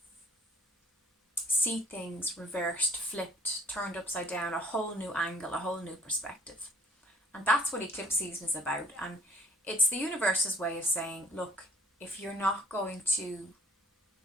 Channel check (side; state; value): both; normal; correlation 0.55